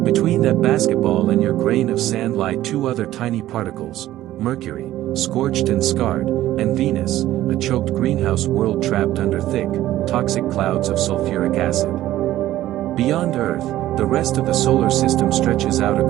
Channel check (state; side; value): quieter; left; 14.3 dB